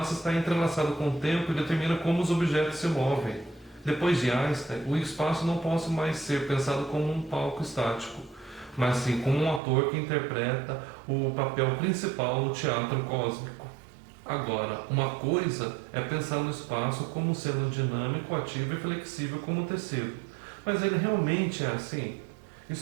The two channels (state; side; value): drops out; left; at 9.6 s